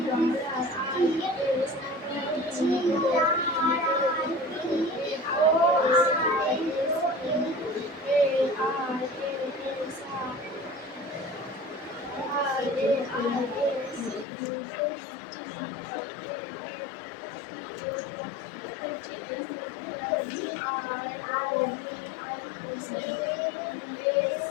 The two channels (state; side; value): drops out; right; at 14.2 s